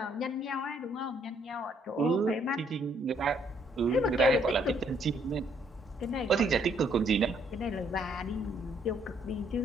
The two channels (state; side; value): normal; both; correlation 0.68